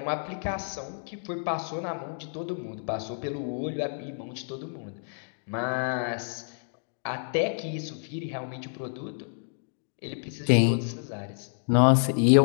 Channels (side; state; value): right; silent; digital silence